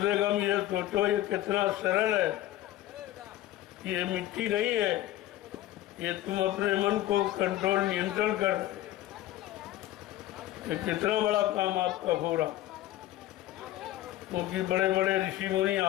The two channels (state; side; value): quieter; right; 14.4 dB